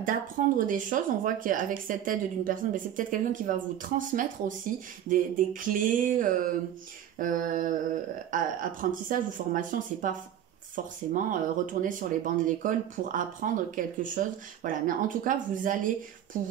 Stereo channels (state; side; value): quieter; left; 10.5 dB